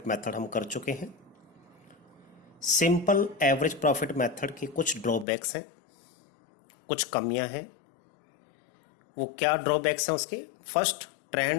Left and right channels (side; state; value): right; drops out; at 5.2 s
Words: method हम कर चुके हैं। सिंपल एवरेज प्रॉफिट मेथड की कुछ ड्रॉबैक्स हैं, कुछ कमियां हैं। वो क्या ड्रॉबैक्स हैं उसके? First,